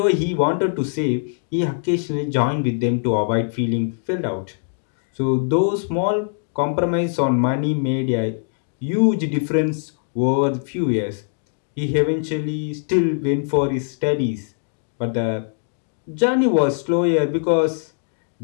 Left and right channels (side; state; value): right; silent; digital silence